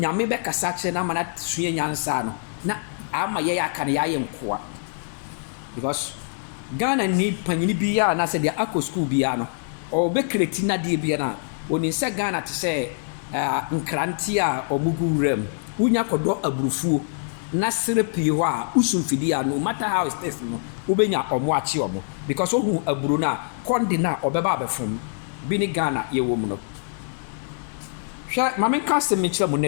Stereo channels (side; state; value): right; silent; digital silence